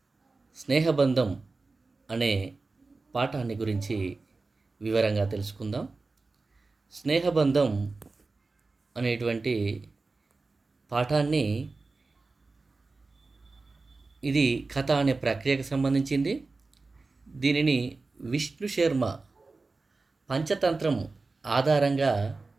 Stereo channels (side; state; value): left; quieter; 3.7 dB